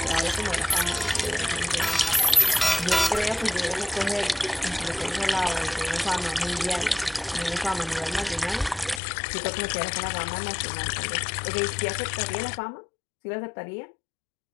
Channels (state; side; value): drops out; right; at 9.0 s